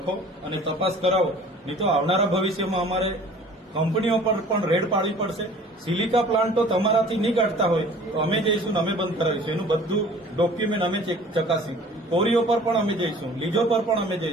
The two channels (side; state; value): both; normal; correlation 0.48